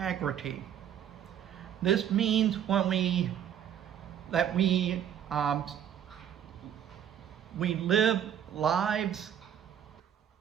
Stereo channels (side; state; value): left; quieter; 9.6 dB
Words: This means we live lives